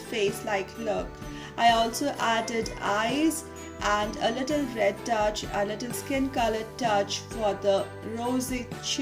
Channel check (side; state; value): both; identical; correlation 1.00